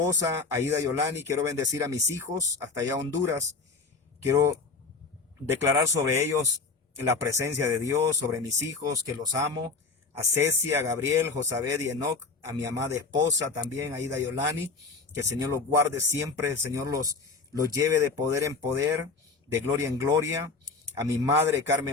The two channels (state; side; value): quieter; right; 4.3 dB